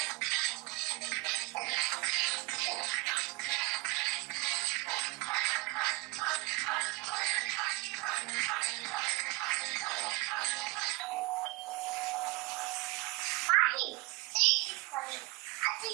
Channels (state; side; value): quieter; left; 24.3 dB